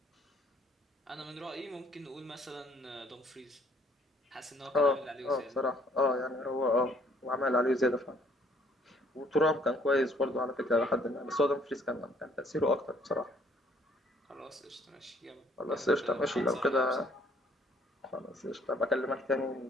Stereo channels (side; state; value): both; normal; correlation 0.63